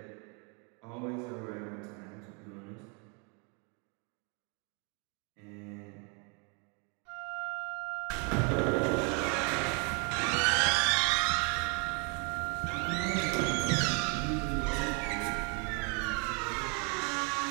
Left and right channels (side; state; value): left; quieter; 34.6 dB